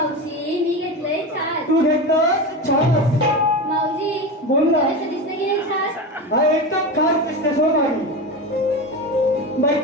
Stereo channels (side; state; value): both; normal; correlation 0.23